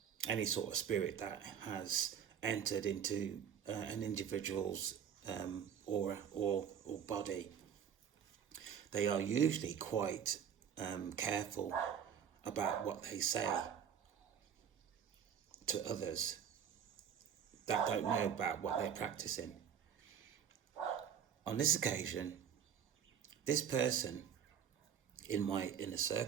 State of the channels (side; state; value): left; quieter; 8.2 dB